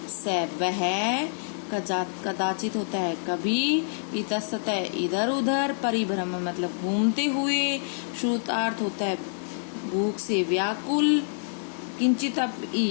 स वह, कदाचित होता है कभी, इतस्त इधर उधर, परिभ्रमण मतलब घूमते हुए, श्रुतार्थ होता है भूख से व्याकुल, किंचित अपि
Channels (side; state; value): right; silent; digital silence